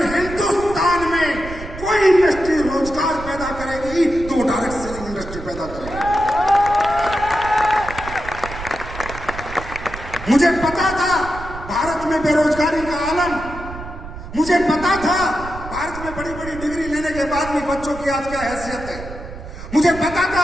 हिंदुस्तान में कोई इंडस्ट्री रोजगार पैदा करेगी तो वो डायरेक्ट सेलिंग इंडस्ट्री पैदा करेगी। मुझे पता था भारत में बेरोजगारी का आलम, मुझे पता था भारत में बड़ी बड़ी डिग्री लेने के बाद भी बच्चों की आज क्या हैसियत है, मुझे पता था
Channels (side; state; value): right; noise; rumble, 12 dB below the sound